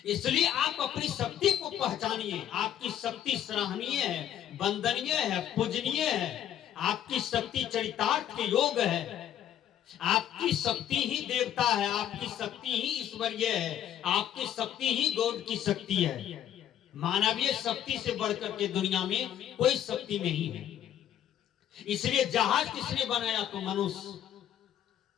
इसलिए आप अपनी शक्ति को पहचानिए। आपकी शक्ति सराहनीय है, वंदनीय है, पूजनीय है। आपकी शक्ति चरितार्थ के योग है। आपकी शक्ति ही देवता है, आपकी शक्ति ही ईश्वरीय है, आपकी शक्ति ही गॉड की शक्ति है। मानवीय शक्ति से बढ़कर के दुनिया में कोई शक्ति नहीं है। इसलिए जहाज किसने बनाया तो मनुष्य,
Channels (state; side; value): quieter; right; 10.6 dB